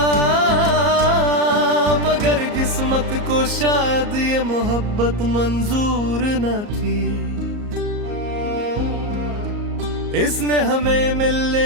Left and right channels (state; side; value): late; left; 34 ms